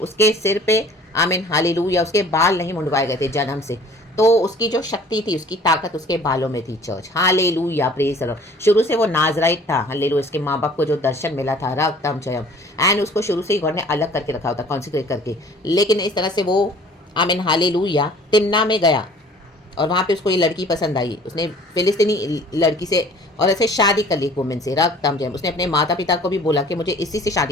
उसके सिर पे आमीन, हालेलुया, उसके बाल नहीं मुंडवाए गए थे जन्म से, तो उसकी जो शक्ति थी, उसकी ताकत उसके बालों में थी। Church, hallelujah, praise the Lord. शुरू से वो नाजराइट था। हालेलुया, उसके माँ बाप को जो दर्शन मिला था, रक्तम जयम, एंड उसको शुरू से ही गॉड ने अलग करके रखा होता, कॉन्सिक्रेट करके। लेकिन इस तरह से वो आमीन, हालेलुया, तिम्ना में गया और वहाँ पे उसको ये लड़की पसंद आई। उसने फिलिस्तीनी लड़की से और ऐसे शादी कर ली, वुमेन से। रक्तम जयम। उसने अपने माता पिता को भी बोला कि मुझे इसी से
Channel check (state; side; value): normal; both; correlation 0.51